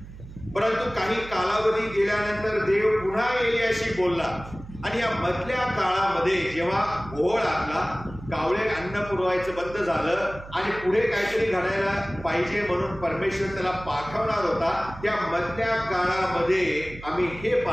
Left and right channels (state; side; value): noise; right; hum, 15 dB below the sound